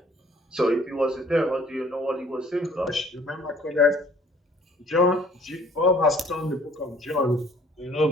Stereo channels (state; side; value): normal; both; correlation 0.56